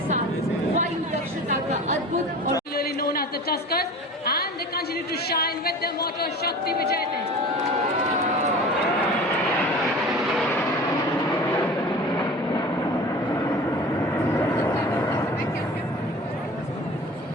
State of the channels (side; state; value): both; normal; correlation 0.39